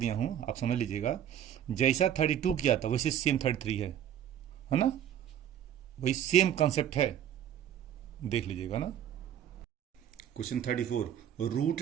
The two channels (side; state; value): left; quieter; 10.2 dB